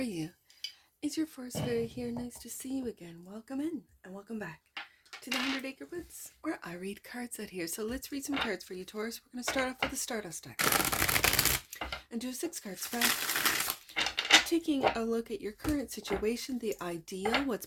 Is your forest fairy here? Nice to see you again. Welcome in and welcome back to the 100 Acre Woods, where I read cards out here. So let's read some cards for you, Taurus. We're going to start off with the Stardust deck and do a 6-card spread, taking a look at your current situation, the ideal, what's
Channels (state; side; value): identical; both; correlation 1.00